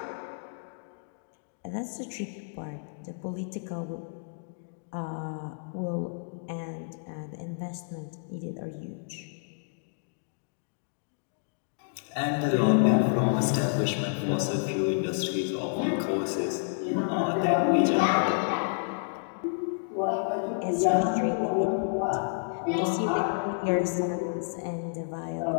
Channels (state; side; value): silent; right; digital silence